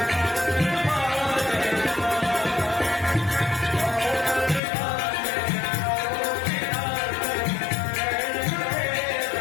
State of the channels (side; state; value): right; drops out; at 4.6 s